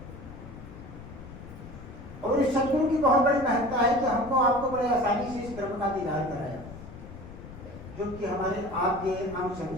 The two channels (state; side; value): noise; left; rumble, 14 dB below the sound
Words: और इस सदगुरु की बहुत बड़ी महत्ता है कि हमको आपको बड़े आसानी से इस ब्रह्म का दीदार कराया, जो कि हमारे आपके अंश